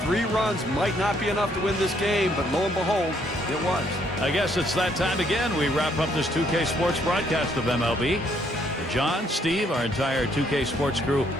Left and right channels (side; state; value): both; normal; correlation 0.69